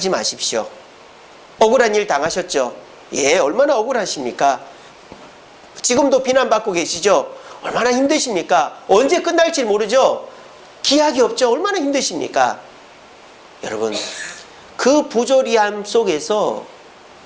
마십시오. 억울한 일 당하셨죠? 예, 얼마나 억울하십니까? 지금도 비난받고 계시죠? 얼마나 힘드십니까? 언제 끝날지 모르죠? 기약이 없죠? 얼마나 힘드십니까? 여러분, 그 부조리함 속에서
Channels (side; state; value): both; identical; correlation 1.00